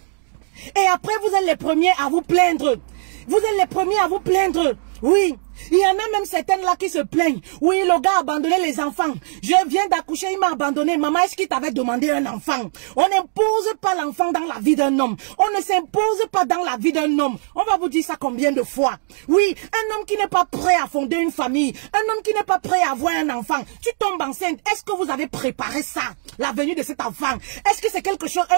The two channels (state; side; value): silent; left; 66 dB below the other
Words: Et après, vous êtes les premiers à vous plaindre. Vous êtes les premiers à vous plaindre. Oui. Il y en a même certaines là qui se plaignent. Oui, le gars a abandonné les enfants. Je viens d'accoucher, il m'a abandonné. Maman, est-ce qu'il t'avait demandé un enfant? On n'impose pas l'enfant dans la vie d'un homme. On ne s'impose pas dans la vie d'un homme. On va vous dire ça combien de fois? Oui, un homme qui n'est pas prêt à fonder une famille. Un homme qui n'est pas prêt à avoir un enfant. Tu tombes enceinte. Est-ce que vous avez préparé ça? La venue de cet enfant. Est-ce que c'est quelque chose,